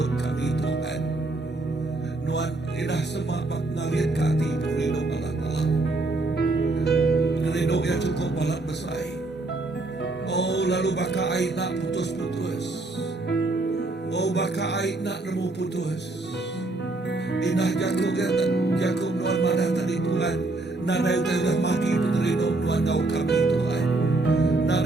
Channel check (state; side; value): quieter; left; 3.1 dB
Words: kami Tuhan. Nuan inah semapak ngaliat kati pengeridok balak Allah. Pengeridok yang cukup balak besar. Oh lalu baka ay nak putus-putus. Oh baka ay nak nemu putus. Inah Jakob Nuan mana tadi Tuhan. Nada itu udah maki pengeridok Nuan kau kami Tuhan.